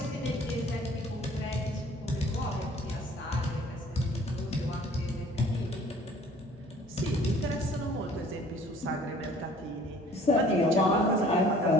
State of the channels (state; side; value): normal; both; correlation 0.53